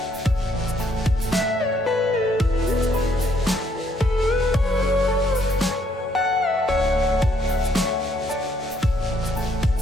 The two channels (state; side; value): normal; both; correlation 0.69